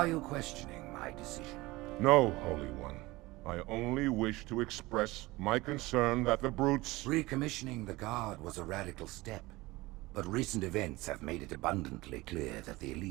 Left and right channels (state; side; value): quieter; left; 20.5 dB